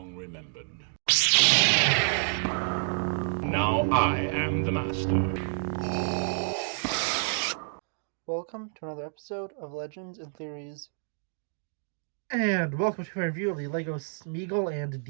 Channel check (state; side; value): silent; left; digital silence